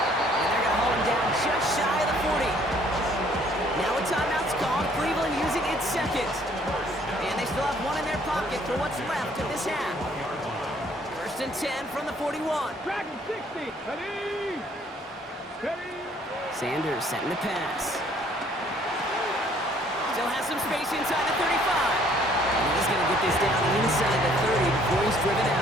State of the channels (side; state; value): both; normal; correlation 0.61